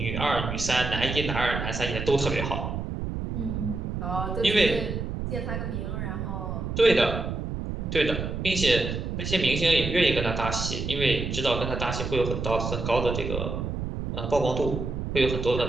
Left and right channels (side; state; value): right; noise; rumble, 4 dB below the sound